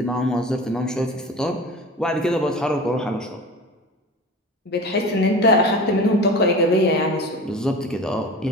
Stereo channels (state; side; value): normal; both; correlation 0.34